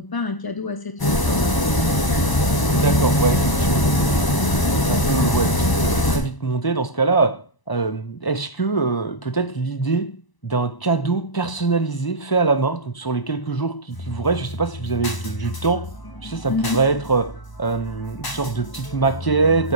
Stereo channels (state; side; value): late; right; 1.0 ms